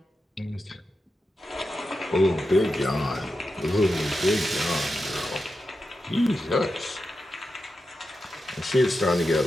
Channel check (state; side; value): normal; both; correlation 0.90